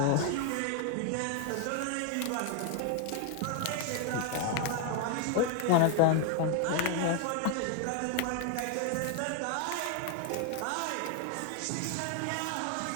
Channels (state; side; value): different; both; correlation 0.00